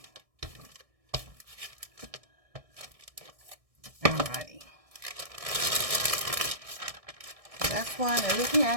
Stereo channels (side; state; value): left; late; 1.6 ms